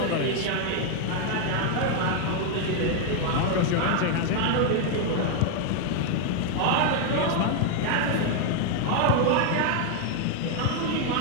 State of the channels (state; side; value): different; both; correlation 0.01